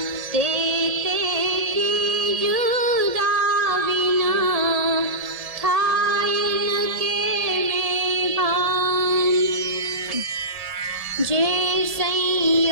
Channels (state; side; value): late; left; 1.7 ms